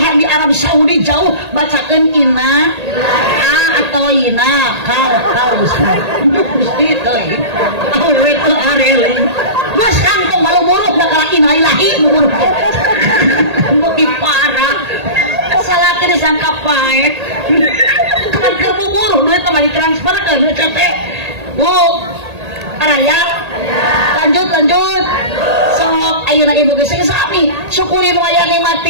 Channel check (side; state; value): left; late; 1.8 ms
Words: di Arab Saudi jauh bacakeun ina atau ina kal ustaz gusti teh awewe teu arele geus kantong malu buruk da kala ina ilahi buruk beuki parah salaki disangka paek kan keur bubur duit mah ditransfer ke CT bu araya lanjut sok ayeuna ibu geus sami syukuri nu aya